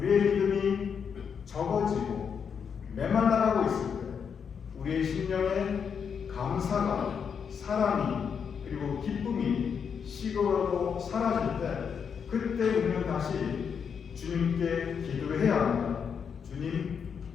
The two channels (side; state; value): right; quieter; 6.8 dB